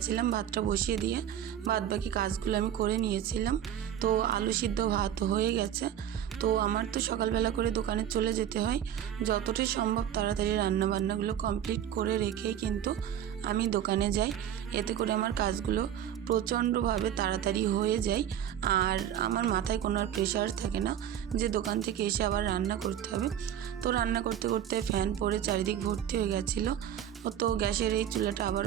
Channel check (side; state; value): left; quieter; 10.1 dB